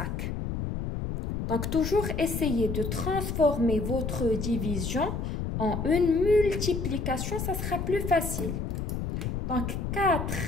Donc, toujours essayez de transformer votre division en une multiplication, ça sera plus facile. Donc, 4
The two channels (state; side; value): noise; left; rumble, 3 dB below the sound